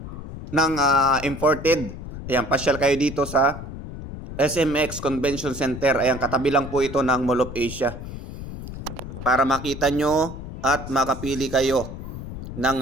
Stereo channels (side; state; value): left; noise; rumble, 10 dB below the sound